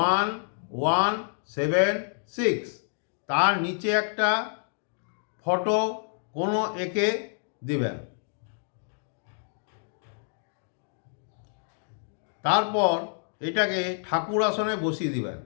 তার নিচে একটা ফটো কোনো এঁকে দিবেন। তারপর এটাকে ঠাকুর আসনে বসিয়ে দিবেন।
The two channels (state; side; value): silent; right; digital silence